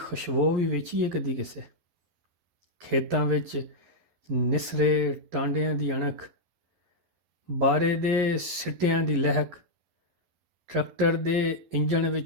ਵੀ ਵੇਚੀ ਹੈ ਕਦੀ ਕਿਸੇ। ਖੇਤਾਂ ਵਿੱਚ ਨਿਸਰੇ ਟਾਂਡਿਆਂ ਦੀ ਅਣਖ, ਬਾਰੇ ਦੇ ਸਿੱਟਿਆਂ ਦੀ ਲਹਿਕ, ਟਰੈਕਟਰ ਦੇ ਇੰਜਣ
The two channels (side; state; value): left; late; 11 ms